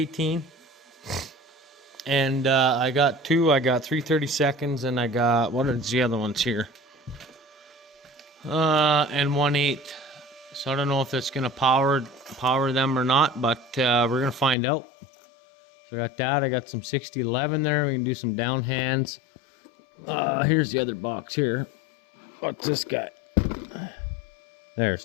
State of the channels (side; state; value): right; drops out; at 14.6 s